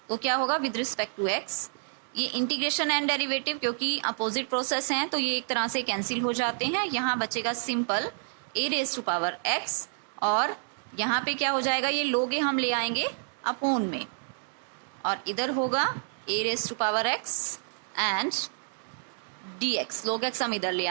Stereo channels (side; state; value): left; silent; digital silence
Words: तो क्या होगा विद रिस्पेक्ट टू x, ये इंटीग्रेशन एंड डेरिवेटिव क्योंकि अपोजिट प्रोसेस हैं तो ये एक तरह से कैंसिल हो जाते हैं। यहाँ बचेगा simple a raise to power x, और यहाँ पे क्या हो जाएगा ये log a हम ले आएंगे अपॉन में, और इधर होगा a raise to power x and dx। log x हम इधर ले